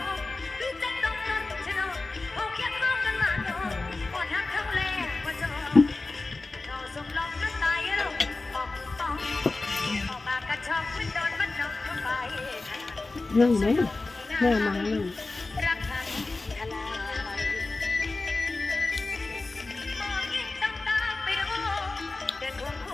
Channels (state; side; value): quieter; right; 3.4 dB